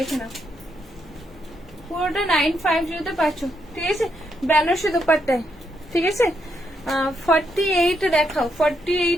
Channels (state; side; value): normal; both; correlation 0.78